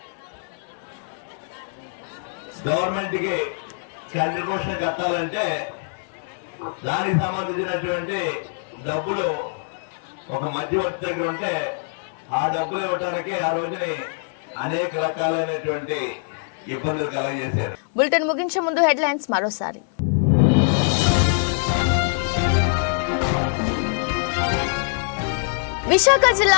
గవర్నమెంట్ కి కంట్రిబ్యూషన్ కట్టాలంటే దానికి సంబంధించినటువంటి డబ్బులు ఒక మధ్యవర్తి దగ్గర ఉంటే ఆ డబ్బులు ఇవ్వడానికి ఆ రోజుని అనేక రకాలైనటువంటి ఇబ్బందులు కలగజేశారు. బులెటిన్ ముగించే ముందు హెడ్లైన్స్ మరోసారి. విశాఖ జిల్లా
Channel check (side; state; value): right; silent; digital silence